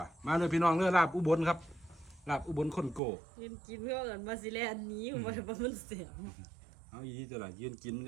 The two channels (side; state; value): left; drops out; at 3.0 s